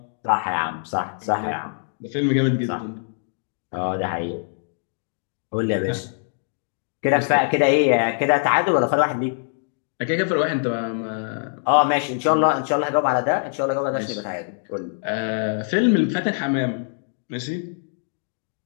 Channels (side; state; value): right; silent; digital silence